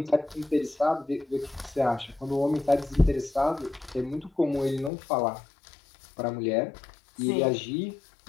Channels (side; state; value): right; drops out; at 4.9 s